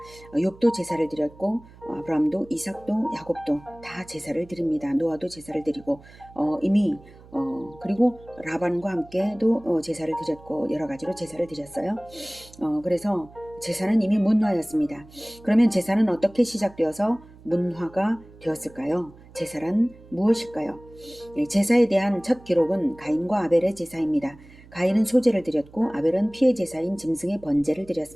욥도 제사를 드렸고 아브라함도 이삭도 야곱도 다 제사를 드립니다. 노아도 제사를 드리고 이미 그리고 라반과 함께도 제사를 드렸고 여러 가지로 제사를 드렸어요. 그래서 제사는 이미 문화였습니다. 그러면 제사는 어떻게 시작되어서 문화가 되었을까요? 제사란 무엇일까요? 제사에 대한 첫 기록은 가인과 아벨의 제사입니다. 가인은 소제를 드렸고 아벨은 피의 제사인 짐승의 번제를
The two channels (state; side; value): noise; right; hum, 22 dB below the sound